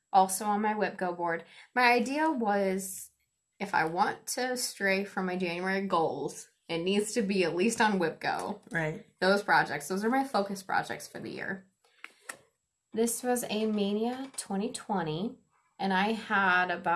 also on my WIPGO board. My idea was, if I want to stray from my January goals, it needs to be at least on WIPGO. Right. Those are my focus projects for the year. This was a Mania 2020, and I had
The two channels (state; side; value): identical; both; correlation 1.00